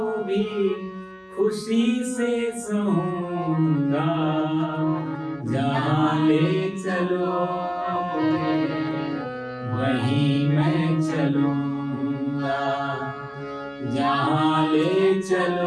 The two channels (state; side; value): identical; both; correlation 1.00